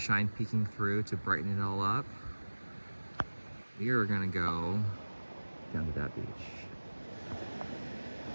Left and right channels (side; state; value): both; inverted; correlation -1.00